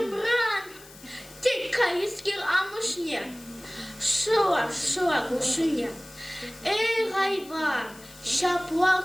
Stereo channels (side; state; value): left; noise; hiss, 21 dB below the sound